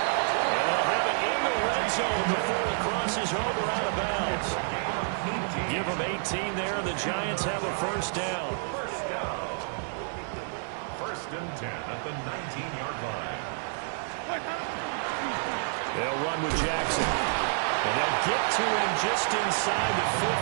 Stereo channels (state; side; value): silent; left; 58 dB below the other